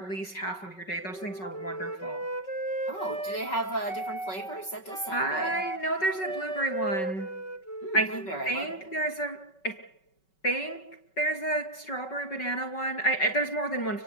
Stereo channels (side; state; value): right; late; 5.3 ms